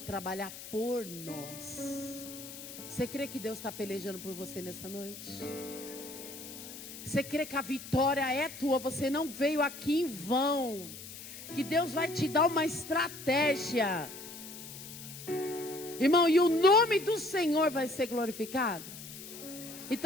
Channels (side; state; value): left; noise; hiss, 13 dB below the sound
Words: por nós. Você crê que Deus está pelejando por você nessa noite? Você crê que a vitória é tua? Você não veio aqui em vão. Que Deus vai te dar uma estratégia. Irmão, e o nome do Senhor vai ser glorificado?